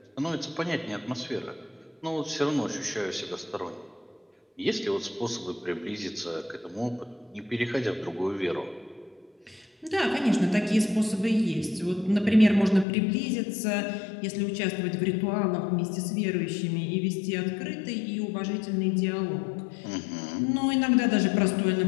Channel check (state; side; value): drops out; right; at 12.9 s